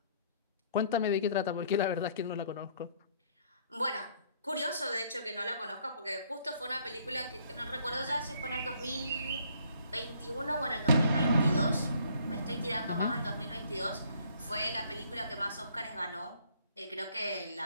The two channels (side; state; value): both; inverted; correlation -0.62